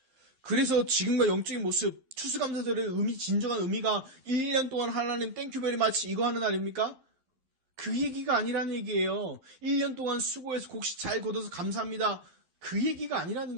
그래서 지금과 영적인 모습, 추수감사절의 진정한 의미가 1년 동안 하나님 땡큐베리 마치 이거 하는 날입니까? 그 얘기가 아니라는 얘기예요. 1년 동안 수고해서 곡식 잘 걷어서 감사합니다. 그 얘기가 아니라는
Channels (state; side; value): late; left; 12 ms